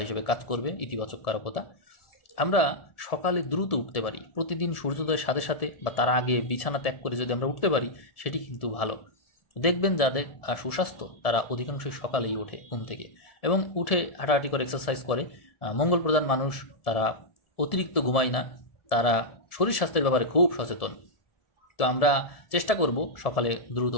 হিসেবে কাজ করবে, ইতিবাচক কারকতা। আমরা সকালে দ্রুত উঠতে পারি। প্রতিদিন সূর্যোদয়ের সাথে সাথে বা তার আগে বিছানা ত্যাগ করে যদি আমরা উঠতে পারি সেটি কিন্তু ভালো। দেখবেন যাদের সুস্বাস্থ্য তারা অধিকাংশই সকালেই ওঠে ঘুম থেকে এবং উঠে হাঁটাহাঁটি করে এক্সারসাইজ করে। মঙ্গল প্রধান মানুষ, তারা অতিরিক্ত ঘুমায় না, তারা শরীর স্বাস্থ্যের ব্যাপারে খুব সচেতন। তো আমরা চেষ্টা করব সকালে দ্রুত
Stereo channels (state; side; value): late; right; 1.7 ms